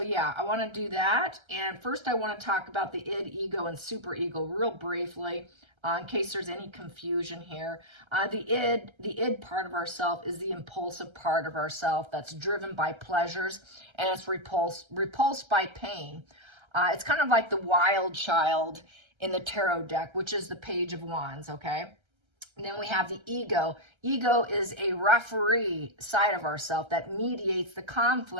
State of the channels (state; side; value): late; left; 1.3 ms